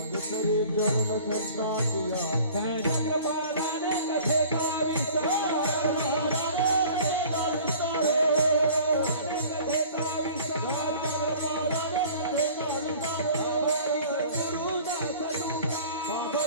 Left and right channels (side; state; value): both; inverted; correlation -0.47